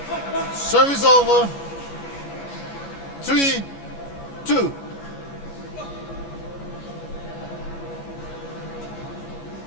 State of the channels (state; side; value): late; right; 14 ms